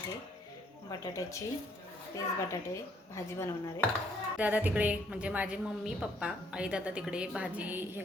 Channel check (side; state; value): both; normal; correlation 0.67